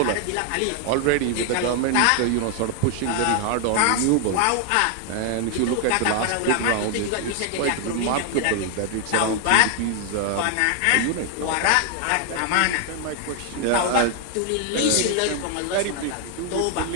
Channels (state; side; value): different; both; correlation 0.00